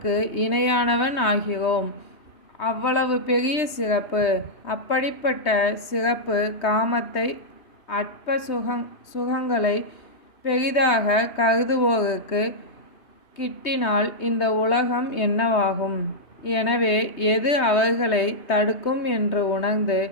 இணையானவன் ஆகிறோம். அவ்வளவு பெரிய சிறப்பு. அப்படிப்பட்ட சிறப்பு காமத்தை அற்ப சுகங்களை பெரிதாக கருதுவோருக்கு கிட்டினால் இந்த உலகம் என்னவாகும்? எனவே எது அவர்களை தடுக்கும் என்று உணர்ந்து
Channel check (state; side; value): late; right; 3.2 ms